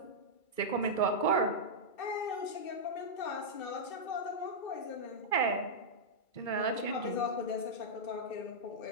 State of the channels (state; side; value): late; right; 2.3 ms